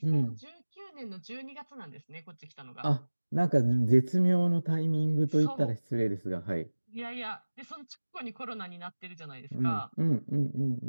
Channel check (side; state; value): both; inverted; correlation -1.00